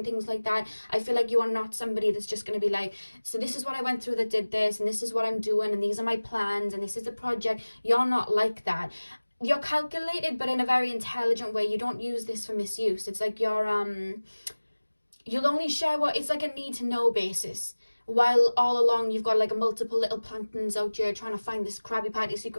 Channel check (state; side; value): inverted; both; correlation -1.00